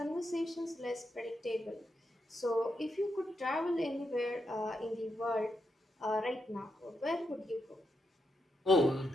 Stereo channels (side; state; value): both; normal; correlation 0.83